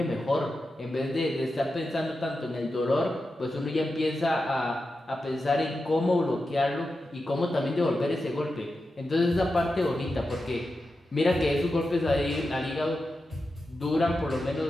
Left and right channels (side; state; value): both; normal; correlation 0.90